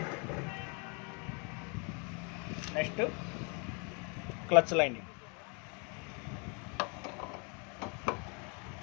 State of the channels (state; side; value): quieter; right; 34.3 dB